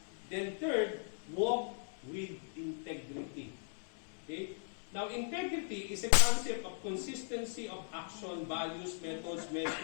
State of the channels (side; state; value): right; silent; digital silence